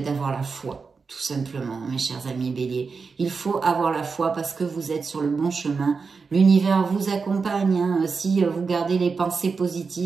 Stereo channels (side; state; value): left; quieter; 4.9 dB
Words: la foi, tout simplement, mes chers amis béliers. Il faut avoir la foi parce que vous êtes sur le bon chemin. L'univers vous accompagne. Hein, si vous gardez les pensées